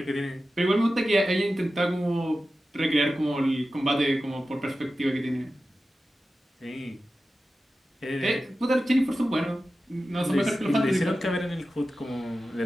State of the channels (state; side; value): normal; both; correlation 0.93